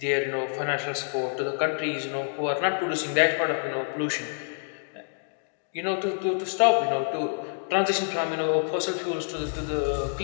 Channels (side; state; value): right; silent; digital silence